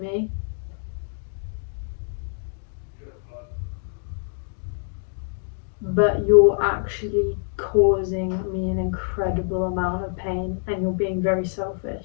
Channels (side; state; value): right; silent; 61 dB below the other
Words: me, but you're actually causing me an incredible amount of pain, and you're being very